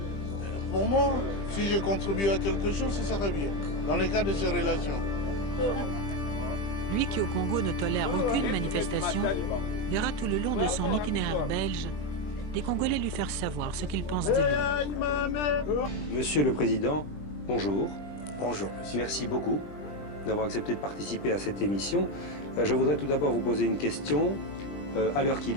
Pour moi, si je contribue à quelque chose, ce serait bien, dans le cadre de ces relations. Lui qui au Congo ne tolère aucune manifestation, verra tout le long de son itinéraire belge les Congolais lui faire savoir ce qu'ils pensent de lui. Monsieur le Président, bonjour. Bonjour. Merci beaucoup d'avoir accepté de participer à cette émission. Je voudrais tout d'abord vous poser une question. À l'heure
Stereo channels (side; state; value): right; late; 20 ms